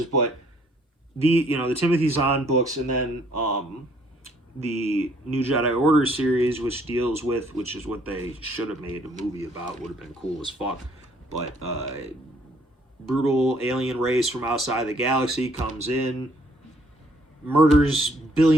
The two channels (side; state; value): both; normal; correlation 0.64